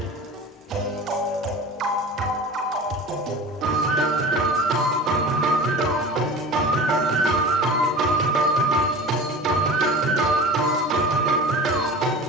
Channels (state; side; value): normal; both; correlation 0.36